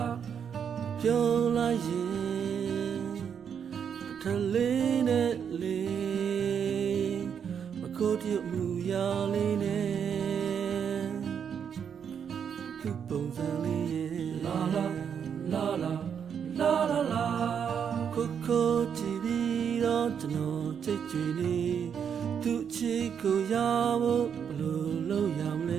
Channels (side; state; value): left; quieter; 7.6 dB